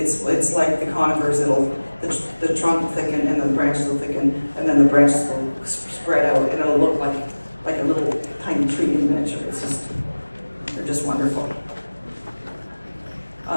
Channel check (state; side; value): inverted; both; correlation -1.00